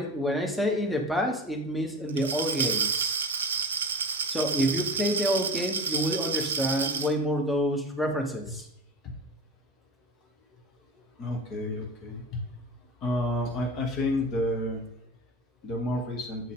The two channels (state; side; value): normal; both; correlation 0.32